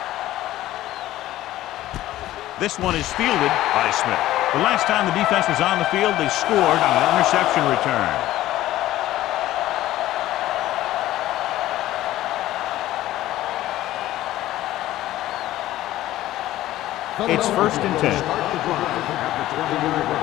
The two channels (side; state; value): right; quieter; 14.9 dB